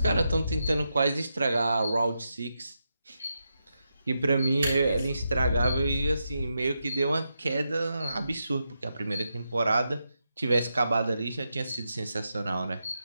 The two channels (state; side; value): inverted; both; correlation -0.85